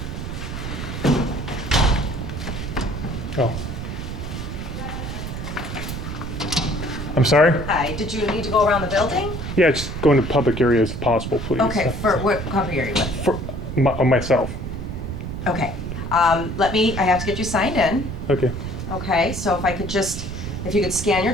Oh. I'm sorry? Hi, did you need to go around the building? Yeah, just go into public areas if possible, please. Okay, for what public area? For myself. Okay, I have to get you signed in. Okay. Okay, so if you could scan your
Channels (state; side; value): noise; right; rumble, 6 dB below the sound